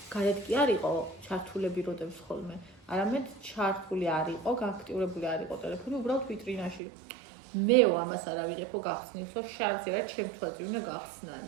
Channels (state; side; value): drops out; left; at 6.8 s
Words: გარეთ კი არ იყო ჩართულები როდებს ხოლმე, არამედ ჩართული არ იყო, გააქტიურებული არ იყო ტელეფონი, უბრალოდ ვიტრინაში. მეო ამას არ ავიღებო გახსნილს, რომ შარზე რა ჩემ თვალზე უნდა